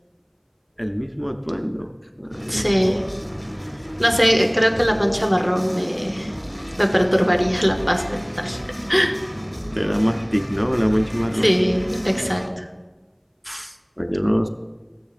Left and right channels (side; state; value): both; identical; correlation 1.00